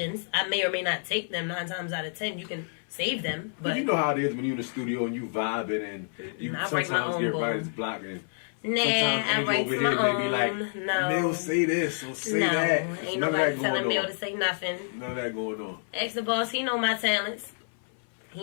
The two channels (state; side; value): silent; right; 56 dB below the other